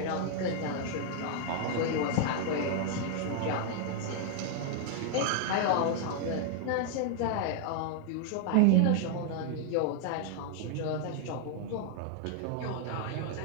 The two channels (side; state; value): both; different; correlation 0.00